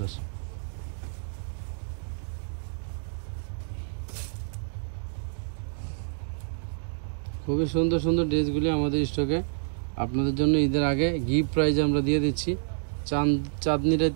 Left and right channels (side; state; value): left; silent; digital silence